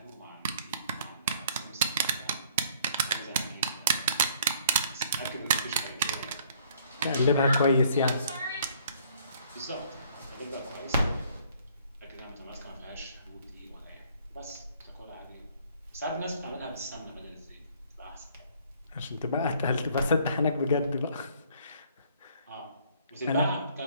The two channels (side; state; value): both; inverted; correlation -0.60